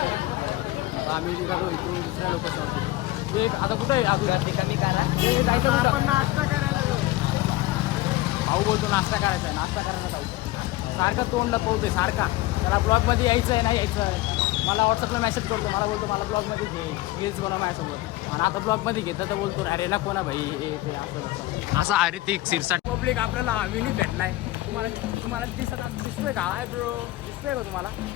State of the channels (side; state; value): right; quieter; 17.8 dB